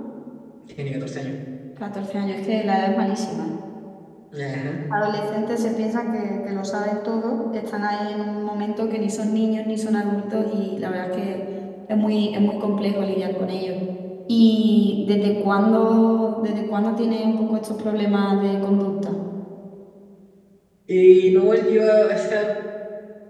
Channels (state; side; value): identical; both; correlation 1.00